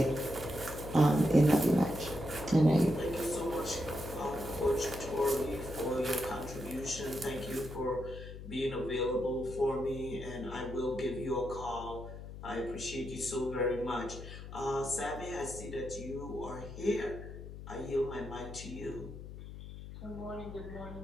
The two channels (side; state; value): left; noise; hum, 11 dB below the sound